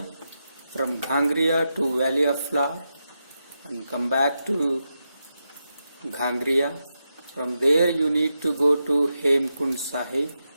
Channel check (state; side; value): inverted; both; correlation -0.87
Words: from Ghangriya to Valley of Flower, and come back to Ghangriya. From there you need to go to Hemkund Sahib,